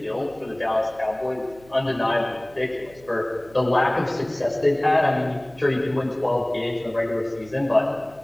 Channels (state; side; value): noise; right; hum, 25 dB below the sound